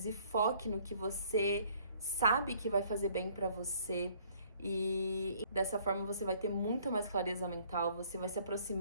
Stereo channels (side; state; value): both; inverted; correlation -0.60